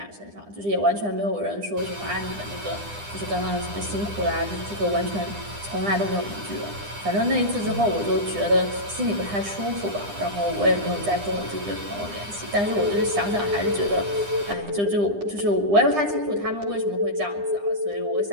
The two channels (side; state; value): left; late; 9.9 ms